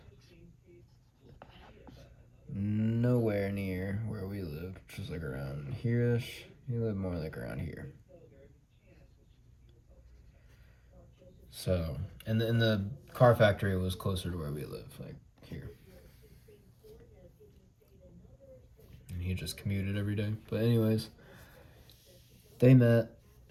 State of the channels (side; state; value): both; identical; correlation 1.00